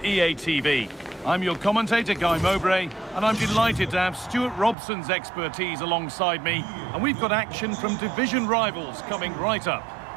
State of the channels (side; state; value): left; drops out; at 4.8 s